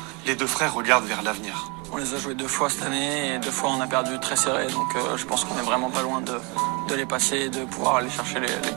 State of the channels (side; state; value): left; quieter; 30.3 dB